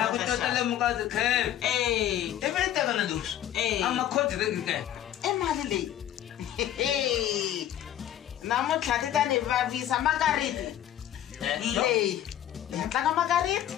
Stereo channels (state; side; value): quieter; right; 11.6 dB